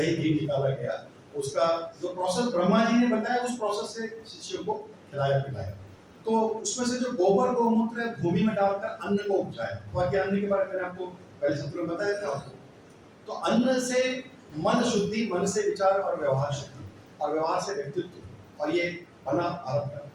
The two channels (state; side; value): identical; both; correlation 1.00